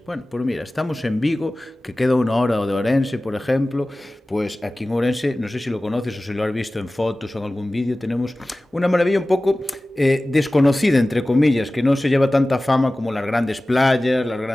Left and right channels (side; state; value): both; normal; correlation 0.97